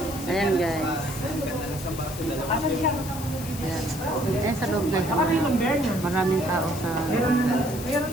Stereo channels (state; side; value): noise; left; hiss, 12 dB below the sound